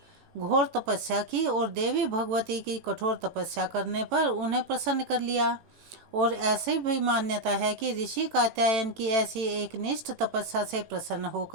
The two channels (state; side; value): late; left; 18 ms